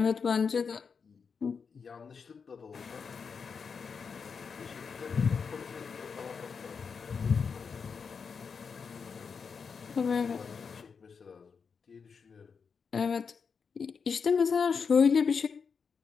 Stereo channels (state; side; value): quieter; right; 5.8 dB